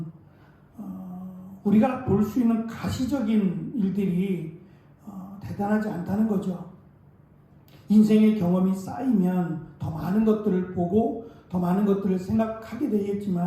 우리가 볼 수 있는 가시적인 일들이 대단하지 않다는 거죠. 인생의 경험이 쌓이면 더 많은 것들을 보고 더 많은 것들을 생각하게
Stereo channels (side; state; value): both; identical; correlation 1.00